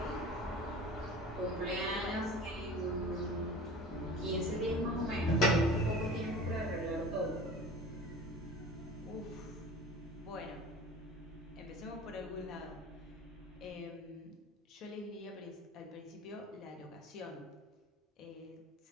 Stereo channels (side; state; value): both; normal; correlation 0.39